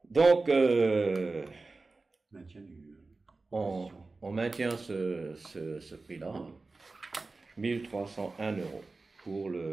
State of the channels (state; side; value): quieter; left; 3.6 dB